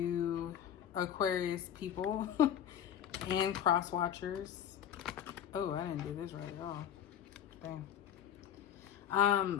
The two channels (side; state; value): right; quieter; 9.7 dB